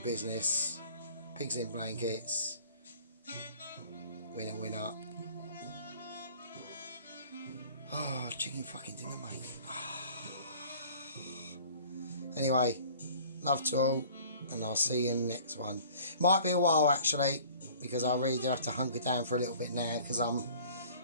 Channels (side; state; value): both; inverted; correlation -0.49